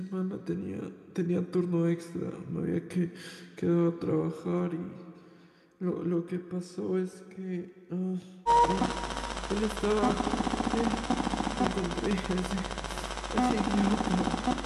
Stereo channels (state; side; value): identical; both; correlation 1.00